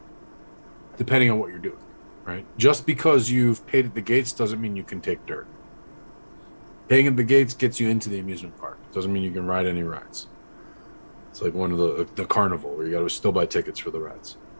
depending on what you're doing, right? Just because you've paid at the gates doesn't mean you can take dirt. Paying at the gates gets you into the amusement park. Doesn't mean you can ride any rides. It's like one of the carnival where you got to still buy tickets for the rides.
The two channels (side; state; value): both; inverted; correlation -1.00